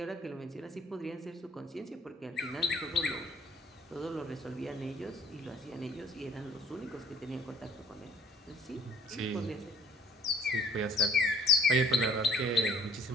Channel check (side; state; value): both; normal; correlation 0.57